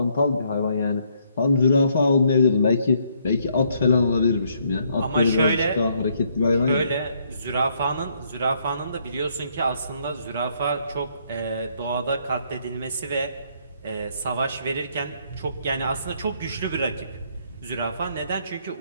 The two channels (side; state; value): both; inverted; correlation -0.70